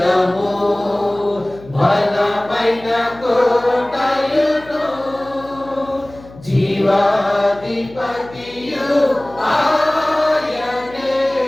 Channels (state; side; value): noise; left; hum, 20 dB below the sound